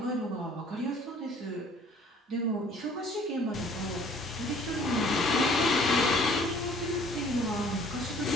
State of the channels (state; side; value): normal; both; correlation 0.55